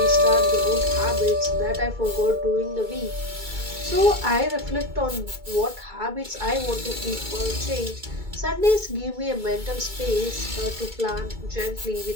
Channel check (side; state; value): left; late; 2.2 ms